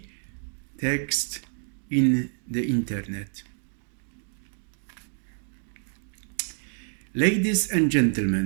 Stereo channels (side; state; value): left; silent; 59 dB below the other